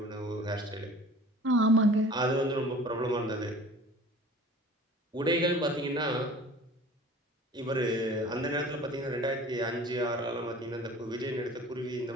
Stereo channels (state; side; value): normal; both; correlation 0.44